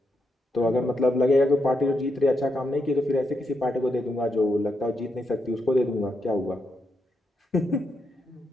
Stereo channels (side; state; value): both; normal; correlation 0.82